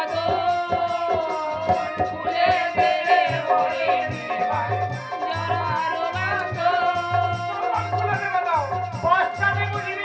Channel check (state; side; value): identical; both; correlation 1.00